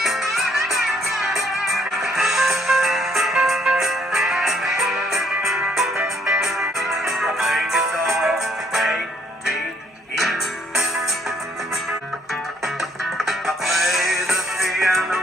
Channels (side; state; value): both; normal; correlation 0.67